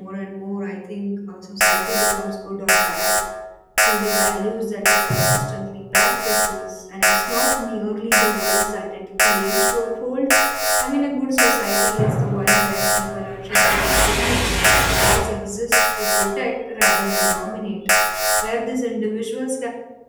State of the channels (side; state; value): both; identical; correlation 1.00